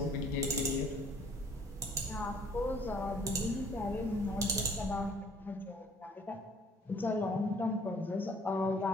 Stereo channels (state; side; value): normal; both; correlation 0.58